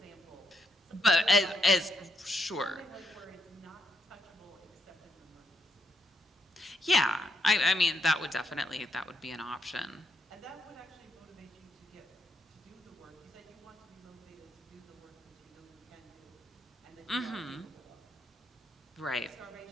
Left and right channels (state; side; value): normal; both; correlation 0.77